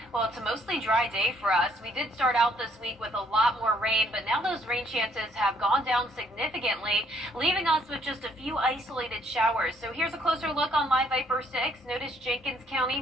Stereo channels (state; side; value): normal; both; correlation 0.66